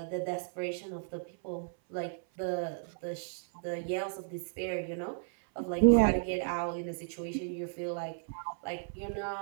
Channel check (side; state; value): left; silent; 55 dB below the other